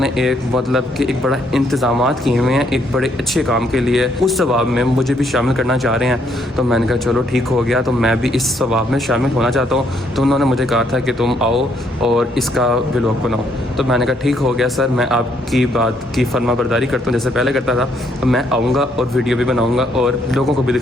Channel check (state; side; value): normal; both; correlation 0.71